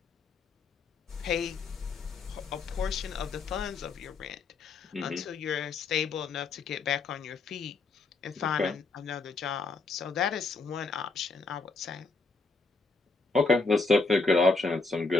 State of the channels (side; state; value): right; quieter; 4.0 dB